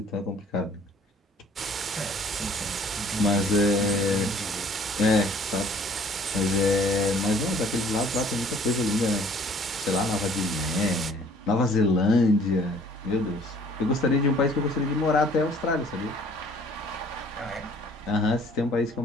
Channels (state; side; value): normal; both; correlation 0.55